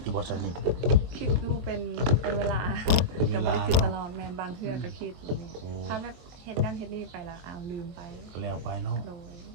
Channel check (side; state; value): left; late; 23 ms